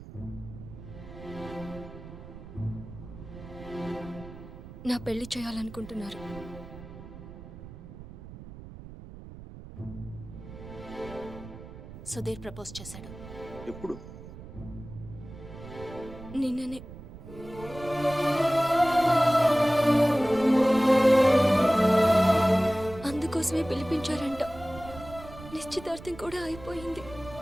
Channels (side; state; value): right; noise; rumble, 15 dB below the sound